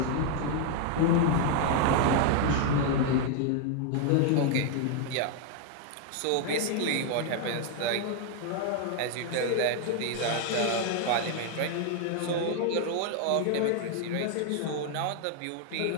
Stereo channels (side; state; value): both; different; correlation 0.00